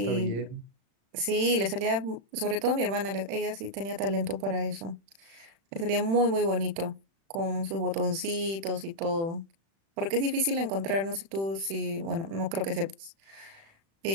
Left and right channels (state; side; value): late; left; 36 ms